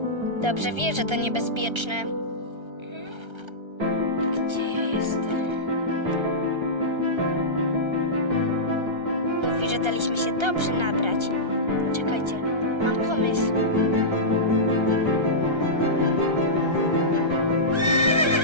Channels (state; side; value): late; left; 1.3 ms